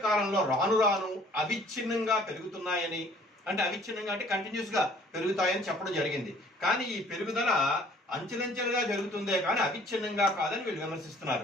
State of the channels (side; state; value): both; normal; correlation 0.55